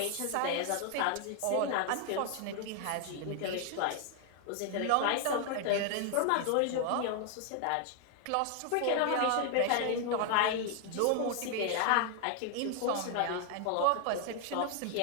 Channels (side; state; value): both; different; correlation 0.00